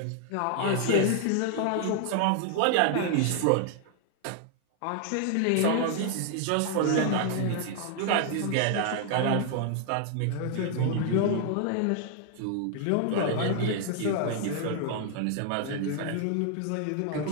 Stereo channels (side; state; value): both; different; correlation 0.00